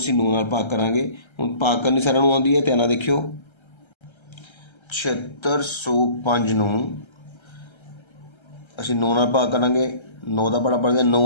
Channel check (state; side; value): late; right; 1.3 ms